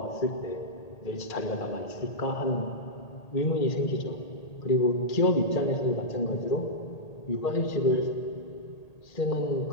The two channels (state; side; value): late; right; 1.8 ms